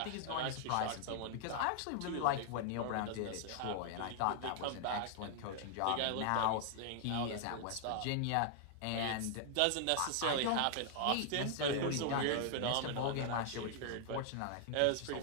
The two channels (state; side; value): different; both; correlation 0.00